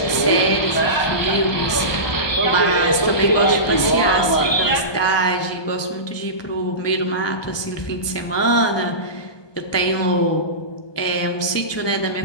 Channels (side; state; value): right; late; 1.2 ms